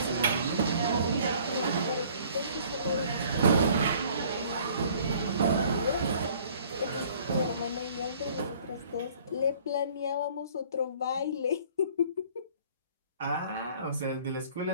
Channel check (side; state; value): both; inverted; correlation -0.55